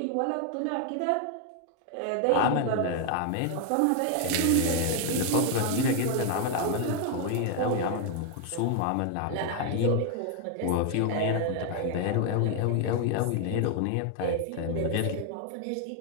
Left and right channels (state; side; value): different; both; correlation 0.00